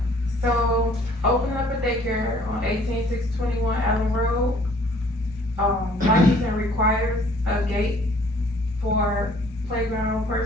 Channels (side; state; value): both; normal; correlation 0.57